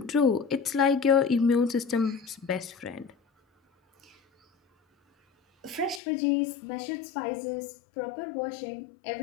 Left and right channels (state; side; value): drops out; right; at 6.0 s